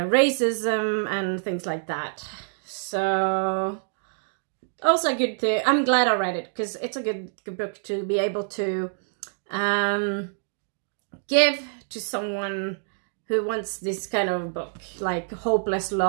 and things like that. So also good to, I'm glad I read it, because it's a good book to be able to give to someone who wants this kind of book, like Hopeless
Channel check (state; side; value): silent; left; digital silence